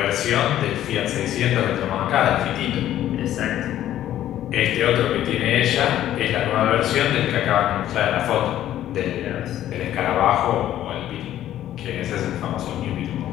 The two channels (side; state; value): right; quieter; 12.4 dB